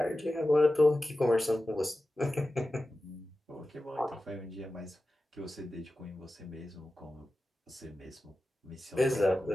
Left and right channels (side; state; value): both; normal; correlation 0.94